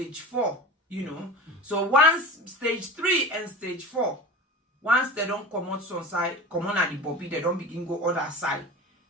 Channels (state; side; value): normal; both; correlation 0.33